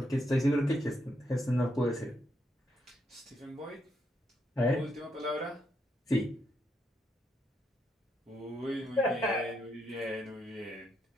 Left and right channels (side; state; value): both; normal; correlation 0.78